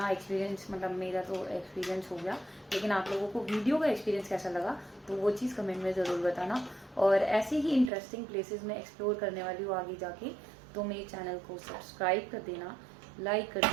एक्सपीरियंस? मतलब मेरा तो एक्सपीरियंस हो गया, लेकिन आप लोगों को वीडियो का एक्सपीरियंस कैसा लगा तो वो चीज़ कमेंट में ज़रूर बताना। और ऐसे ही इंटरेस्टिंग प्लेसेस में एक्सप्लोर करने वाली हूँ आगे जाके। तो मेरे चैनल को सब्सक्राइब कर देना, लाइक कर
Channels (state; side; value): drops out; left; at 7.9 s